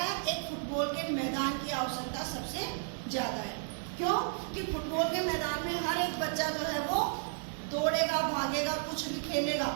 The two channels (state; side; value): silent; left; digital silence